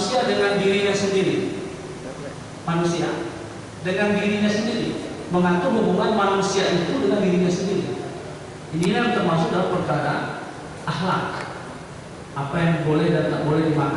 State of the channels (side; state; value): both; identical; correlation 1.00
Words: dengan dirinya sendiri. Manusia dengan dirinya sendiri, mengatur hubungan manusia itu dengan dirinya sendiri. Ini yang termasuk dalam perkara akhlak. Apa yang boleh dan tak boleh